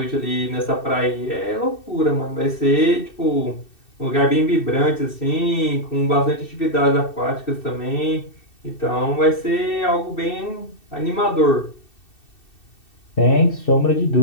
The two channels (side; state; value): right; late; 2.7 ms